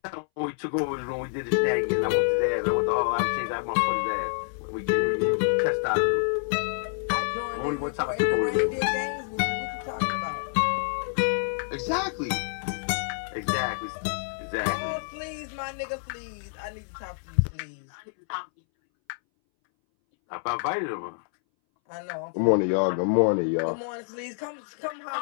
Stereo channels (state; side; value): silent; right; 60 dB below the other